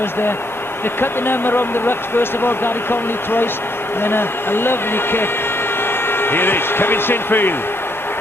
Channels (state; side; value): normal; both; correlation 0.73